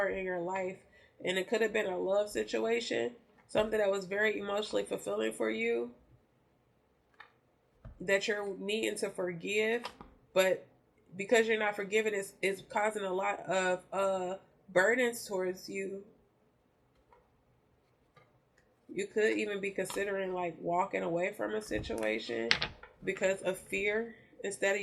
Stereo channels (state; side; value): identical; both; correlation 1.00